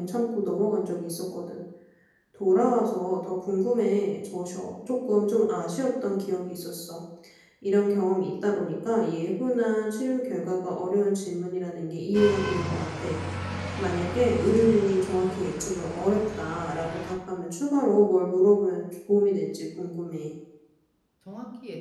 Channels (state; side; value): identical; both; correlation 1.00